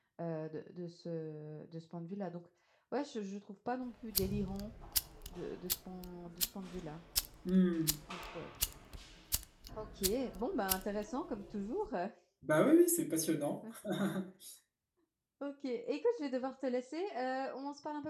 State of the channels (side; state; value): both; identical; correlation 1.00